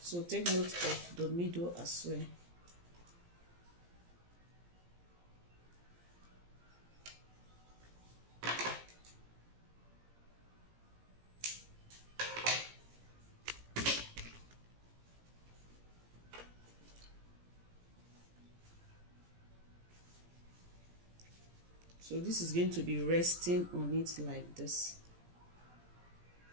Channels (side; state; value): left; late; 17 ms